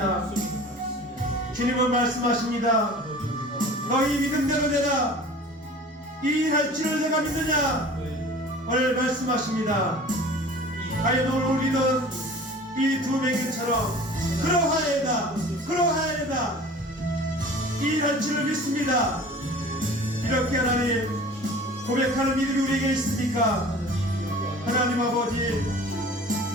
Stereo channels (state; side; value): normal; both; correlation 0.43